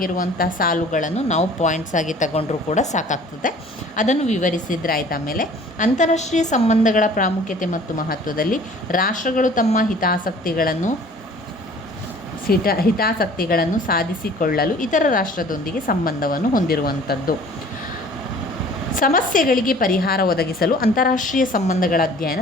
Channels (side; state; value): both; normal; correlation 0.50